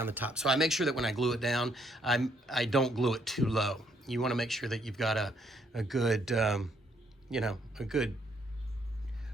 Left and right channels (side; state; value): both; normal; correlation 0.71